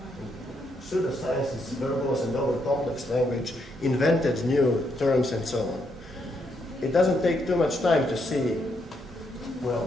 pseudoscience is verbose and over-complex language, invented new terms and so on. It doesn't take too much time to see,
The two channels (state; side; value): normal; both; correlation 0.77